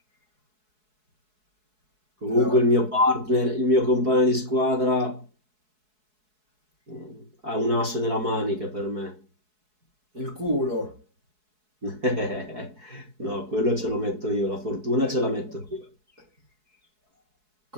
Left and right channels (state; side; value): late; left; 4.7 ms